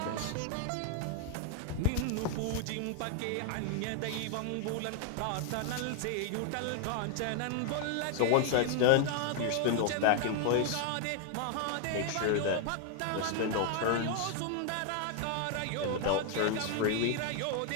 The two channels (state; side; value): different; both; correlation 0.00